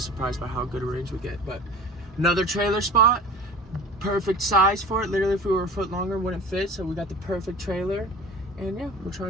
by how good a range we get. But another trailer spot, perfect size for it. Literally, if we were a foot longer, wouldn't fit, so we got the perfect trailer, and yeah, we're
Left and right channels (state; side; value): normal; both; correlation 0.40